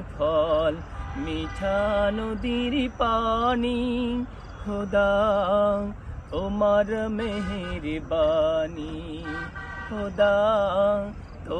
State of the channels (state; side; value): identical; both; correlation 1.00